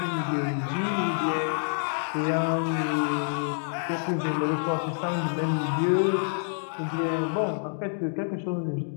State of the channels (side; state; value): right; silent; digital silence